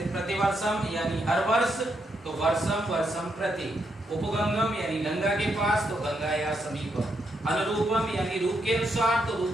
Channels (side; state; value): both; normal; correlation 0.79